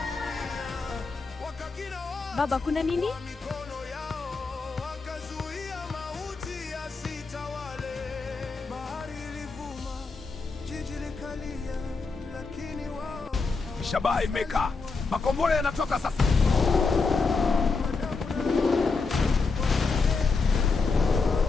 wakakina Baba, kuna nini? mikono yao, wakazuia mauti yasitawale. Bahari ilivuma, jiji likalia, lakini wao Shabaha imekaa. Makombora yanatoka sasa.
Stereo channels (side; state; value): right; quieter; 4.3 dB